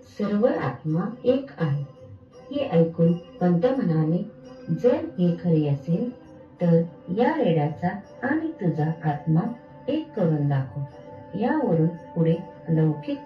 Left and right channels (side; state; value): both; identical; correlation 1.00